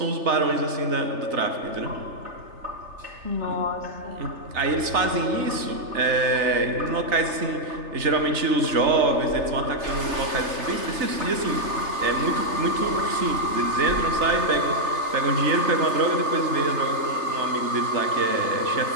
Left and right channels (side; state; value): left; late; 3.3 ms